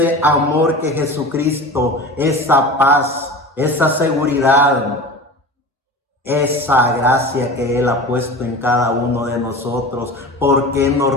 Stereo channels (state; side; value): normal; both; correlation 0.33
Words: amor que Jesucristo, esa paz, esa seguridad, esa gracia que Él ha puesto en cada uno de nosotros, ¿por qué no